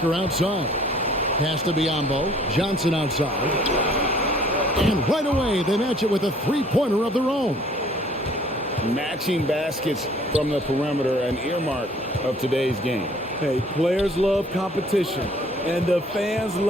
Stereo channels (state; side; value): normal; both; correlation 0.56